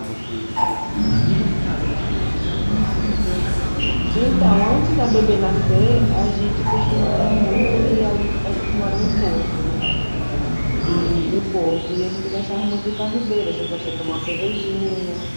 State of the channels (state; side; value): inverted; both; correlation -1.00